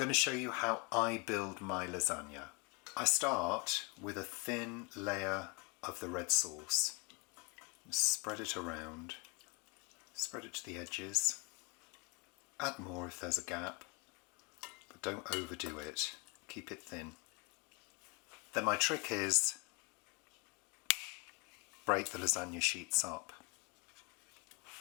to show you how I build my lasagna. I start with a thin layer of the red sauce. Spread it around. Spread it to the edges. Add more if there's a gap, but don't overdo it. Keep it thin. Then my trick is break the lasagna sheets up.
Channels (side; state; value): right; quieter; 28.1 dB